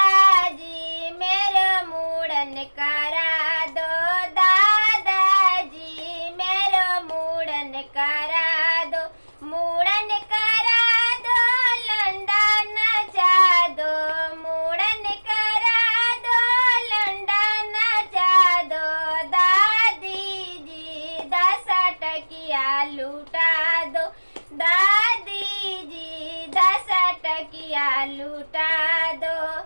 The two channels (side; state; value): both; inverted; correlation -1.00